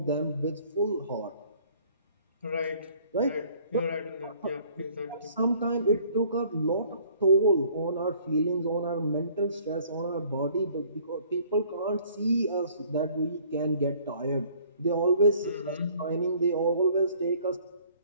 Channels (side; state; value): both; inverted; correlation -0.57